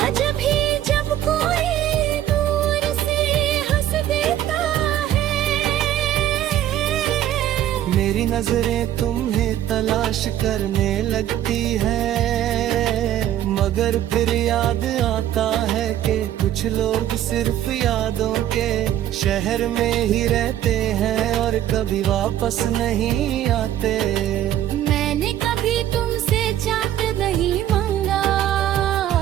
भी जब कोई दूर से हंस देता है। मेरी नजरें तुम्हें तलाश करने लगती है, मगर फिर याद आता है कि कुछ लोग सिर्फ यादों के शहर में ही रहते हैं और कभी वापस नहीं आते। मैंने कभी तुमसे चांद नहीं मांगा,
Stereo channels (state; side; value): quieter; left; 12.0 dB